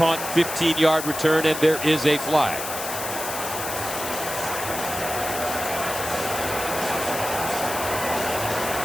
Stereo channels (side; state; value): left; noise; hiss, 6 dB below the sound